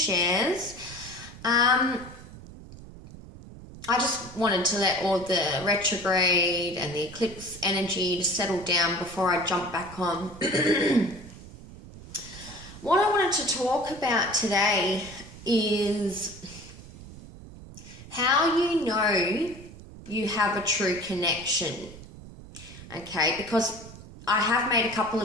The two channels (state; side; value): noise; right; rumble, 16 dB below the sound